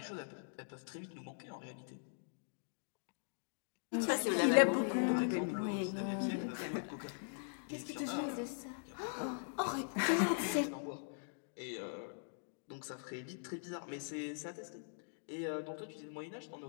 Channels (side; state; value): right; silent; digital silence